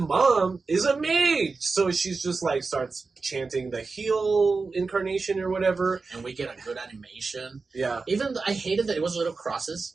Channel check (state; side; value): quieter; left; 4.2 dB